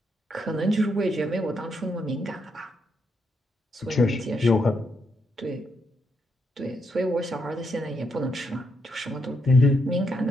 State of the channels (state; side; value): normal; both; correlation 0.79